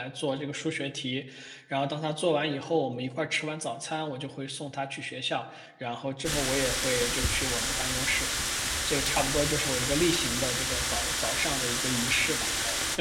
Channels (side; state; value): both; identical; correlation 1.00